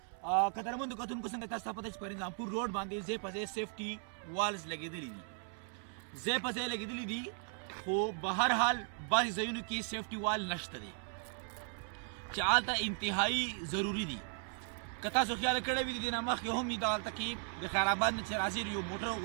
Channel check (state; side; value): silent; left; 53 dB below the other